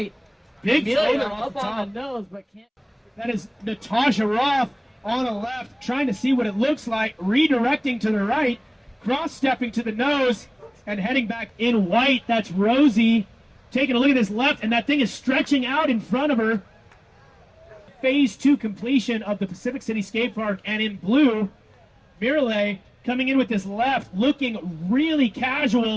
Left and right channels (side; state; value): both; identical; correlation 1.00